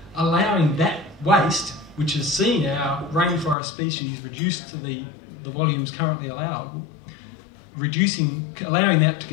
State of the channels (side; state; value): right; drops out; at 3.6 s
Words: allowing that waste, which has seen our rainforest species reduced to the volumes currently allowable, allowing that to